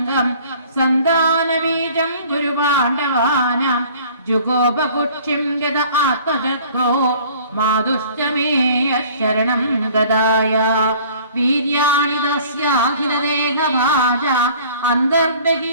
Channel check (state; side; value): inverted; both; correlation -0.51